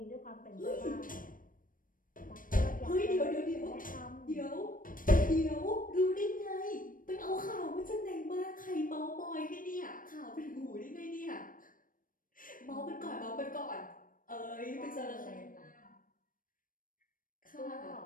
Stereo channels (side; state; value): right; late; 0.40 ms